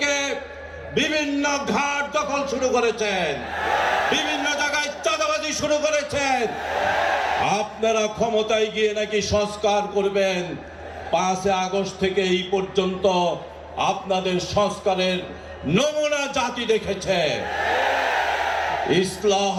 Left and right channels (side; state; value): both; identical; correlation 1.00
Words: বিভিন্ন ঘাট দখল শুরু করেছেন, বিভিন্ন জায়গায় চাঁদাবাজি শুরু করেছেন। আপনারা ক্ষমতায় গিয়ে নাকি সংস্কার করবেন। 5 আগস্ট থেকে এই পর্যন্ত আপনাদের সংস্কারের নমুনা জাতি দেখেছে। ইসলাহ